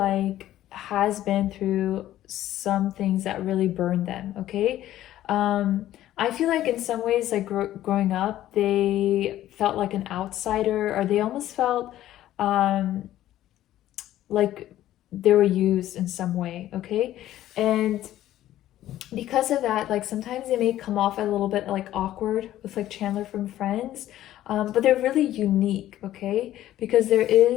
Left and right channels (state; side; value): quieter; right; 13.4 dB